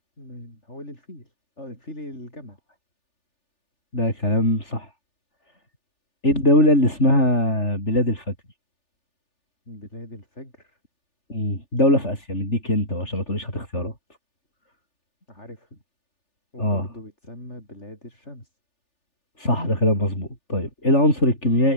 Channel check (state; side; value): late; right; 3.4 ms